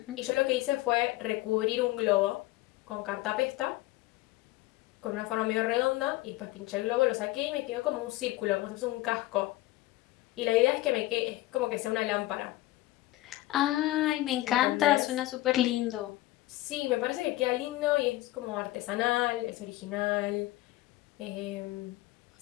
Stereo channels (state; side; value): quieter; right; 17.7 dB